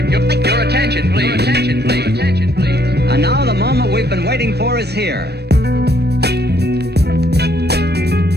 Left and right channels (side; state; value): left; late; 0.47 ms